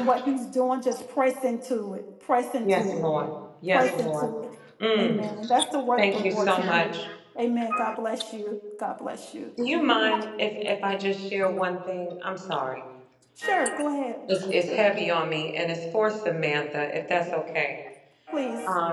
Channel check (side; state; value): both; identical; correlation 1.00